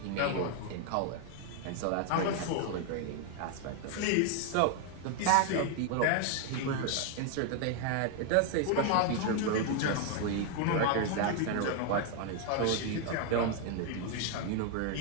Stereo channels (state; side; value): different; both; correlation 0.00